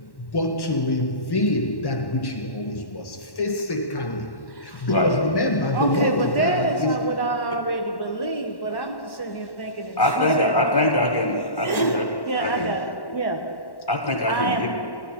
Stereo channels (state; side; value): late; right; 1.1 ms